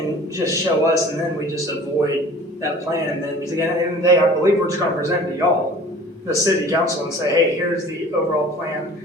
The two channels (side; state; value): both; normal; correlation 0.46